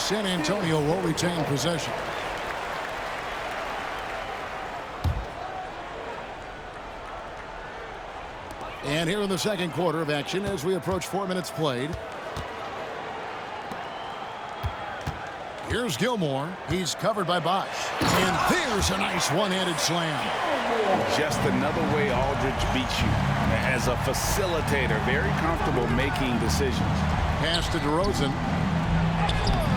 San Antonio will retain possession. And here in the second quarter of action as we approach 4 minutes played. Here's Gilmore. He's covered by Bosh. And there's a nice one-handed slam. Just another way Aldridge beats you. As a facilitator, very comfortable making decisions. Pass to DeRozan.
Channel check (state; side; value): identical; both; correlation 1.00